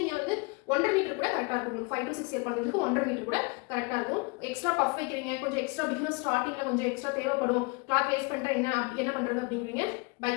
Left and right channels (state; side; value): quieter; right; 29.4 dB